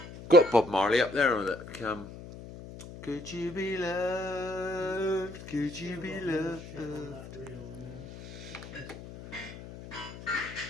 Got Bob Marley up there on that. Could you be loved? Could you be loved?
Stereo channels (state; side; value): noise; left; hum, 13 dB below the sound